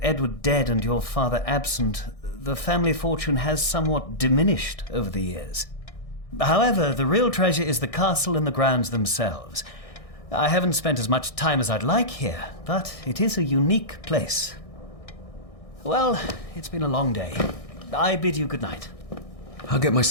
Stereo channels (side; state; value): right; late; 1.6 ms